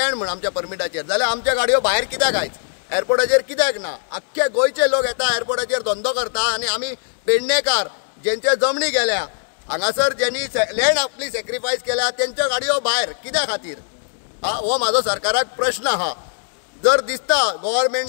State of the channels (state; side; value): silent; right; digital silence